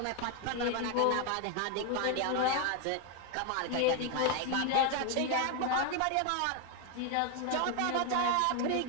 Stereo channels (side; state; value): both; different; correlation 0.01